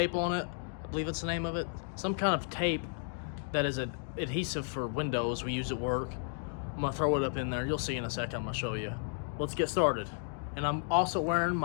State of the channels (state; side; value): silent; right; digital silence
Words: on it. I believe it's the name of it. Some kind of tape that is an adhesive for windows we use at work. I'm gonna throw it up in there. You'll see in a second. I'm gonna show you. Let's get started. And I'm also wearing